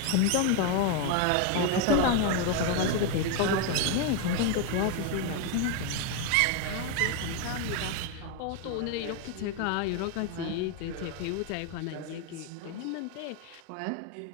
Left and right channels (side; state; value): both; different; correlation 0.01